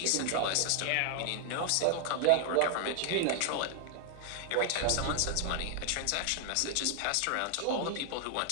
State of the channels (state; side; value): different; both; correlation 0.00